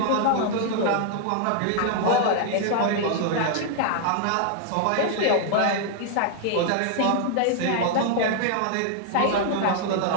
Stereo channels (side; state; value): both; different; correlation 0.00